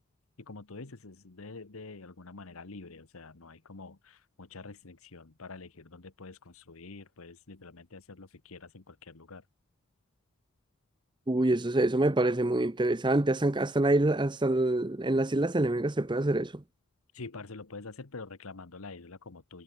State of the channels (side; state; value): both; normal; correlation 0.72